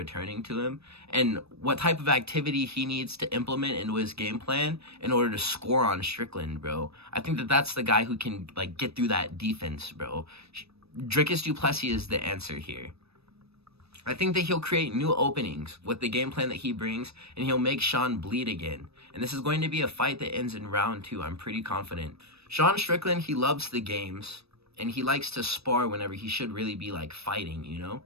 to him, and what type of activity he needs to implement into his game plan in order to score on Strickland, bro. I think that that's the guy who can, like, get through that defense, bro. Dricus du Plessis is the answer here. I think that he'll create new openings with the game plan that he brings, and he'll make Sean bleed again. And this is going to be a fight that ends in round 2. I'm pretty confident. Sean Strickland, he loves the games, and he likes to spar whenever he should really be, like, fighting, you know?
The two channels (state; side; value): late; left; 0.78 ms